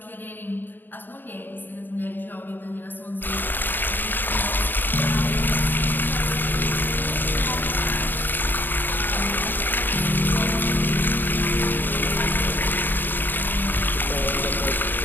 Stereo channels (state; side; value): late; right; 0.092 ms